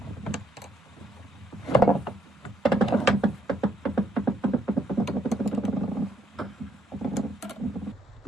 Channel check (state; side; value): normal; both; correlation 0.72